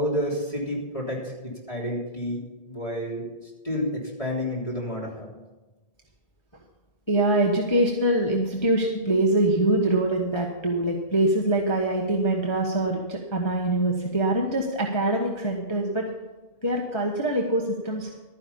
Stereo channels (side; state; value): right; late; 1.7 ms